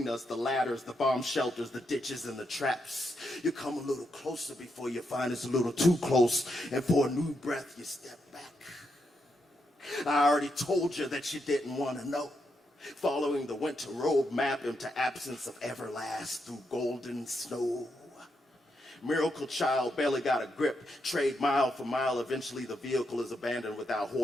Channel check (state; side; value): normal; both; correlation 0.81